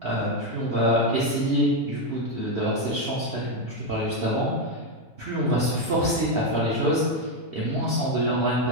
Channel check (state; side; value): normal; both; correlation 0.06